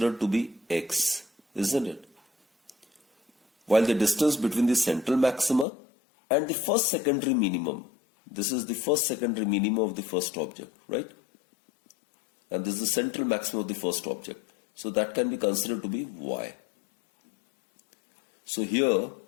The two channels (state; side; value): drops out; right; at 5.7 s